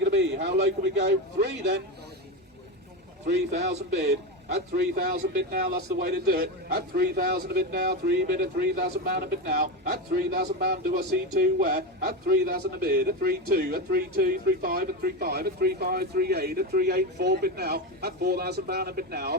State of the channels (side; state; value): both; normal; correlation 0.16